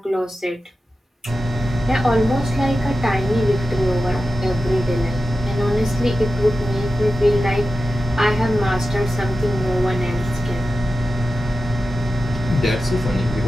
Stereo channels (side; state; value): both; normal; correlation 0.93